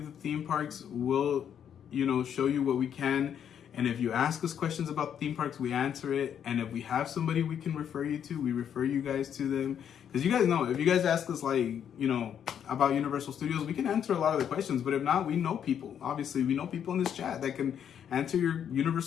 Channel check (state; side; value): quieter; right; 8.8 dB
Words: the theme parks, we'll, you know, show you what we can. And if you ask us questions about theme parks, we answer it. And if we have somebody we can refer you to, we refer you guys to them. Because you guys know, if you guys ask us, like, you know, about Universal Studios, we can answer a lot of the questions. But if not, we know people. Obviously, we know people in this chat that can answer your